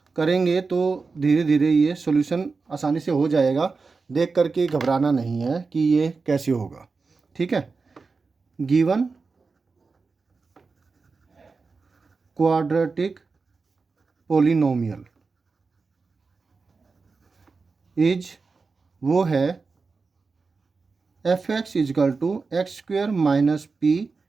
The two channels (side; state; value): left; quieter; 4.4 dB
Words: करेंगे तो धीरे धीरे ये सॉल्यूशन आसानी से हो जाएगा। देख करके घबराना नहीं है कि ये कैसे होगा। ठीक है। गिवन क्वाड्रेटिक पोलिनोमियल इज वो है f x equal to x square minus p